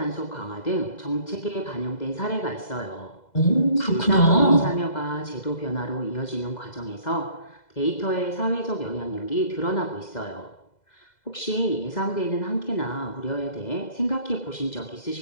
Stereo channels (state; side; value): late; right; 2.0 ms